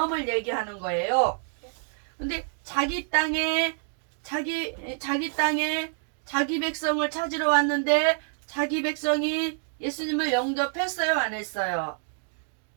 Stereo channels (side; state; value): left; silent; 56 dB below the other